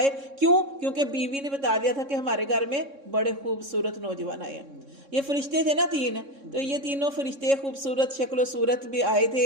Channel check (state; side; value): late; left; 3.6 ms